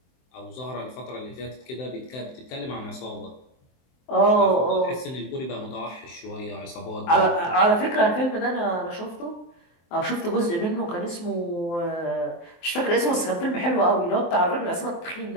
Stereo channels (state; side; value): late; right; 23 ms